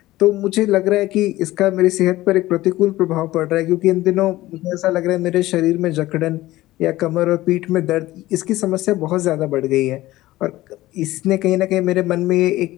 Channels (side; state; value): right; quieter; 17.0 dB